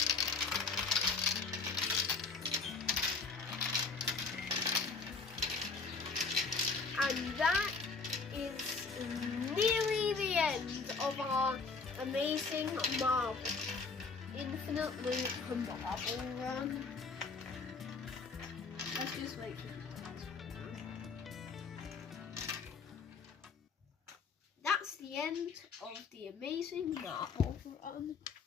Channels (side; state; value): right; quieter; 4.6 dB